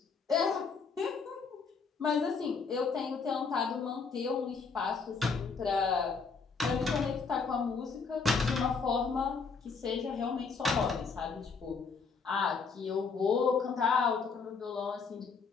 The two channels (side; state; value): right; quieter; 5.1 dB